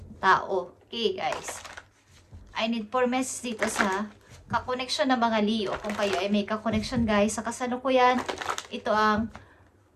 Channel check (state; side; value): identical; both; correlation 1.00